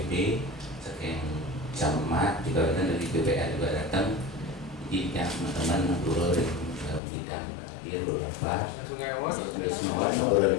sekeng camat juga datang dari BPR juga datang. Jadi yang teman-teman ngobrol bidang dia beberapa semua ngobrol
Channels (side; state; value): right; drops out; at 7.0 s